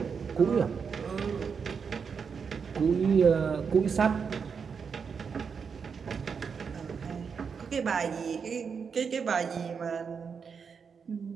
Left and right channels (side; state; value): left; quieter; 6.1 dB